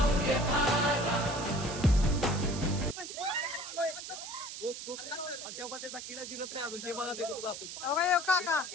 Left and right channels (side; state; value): right; noise; hiss, 9 dB below the sound